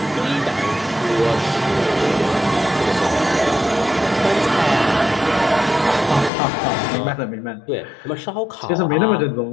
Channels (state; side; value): drops out; right; at 6.3 s